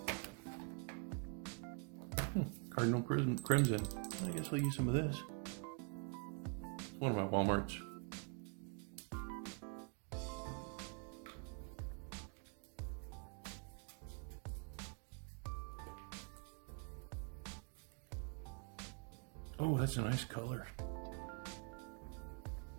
Cardinal Crimson. I guess I'll use some of this. It's one of my Walmarts. Oh, that's a nice color.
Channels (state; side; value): quieter; left; 36.6 dB